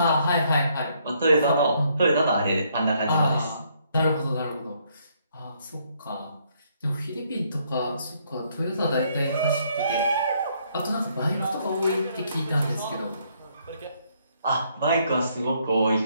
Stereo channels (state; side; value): inverted; both; correlation -0.70